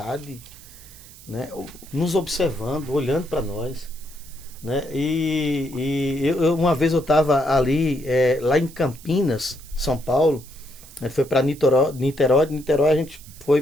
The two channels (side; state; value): right; noise; hiss, 20 dB below the sound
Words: né, nos observando, olhando para nós. Né? Uma vez eu estava ali, lá em Campinas, São Paulo, né, foi para Niterói, de Niterói a gente foi